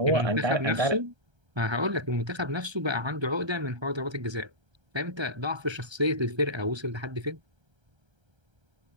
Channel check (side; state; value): left; late; 1.3 ms